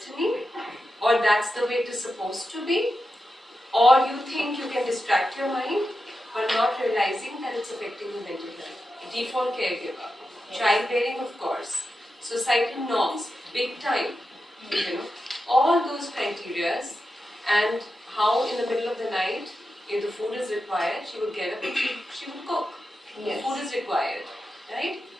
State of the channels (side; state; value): both; normal; correlation 0.89